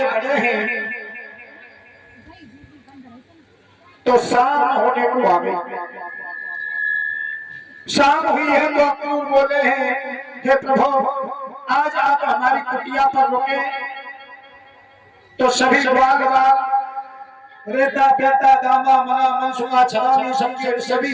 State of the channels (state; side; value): identical; both; correlation 1.00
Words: बढ़े हैं तो शाम होने को आ गई। शाम हुई है तो अक्रूर बोले हैं हे प्रभु आज आप हमारी कुटिया पर रुके। तो सभी बाल रेता बेटा दामा मना मनसुआ छलानी समझे सभी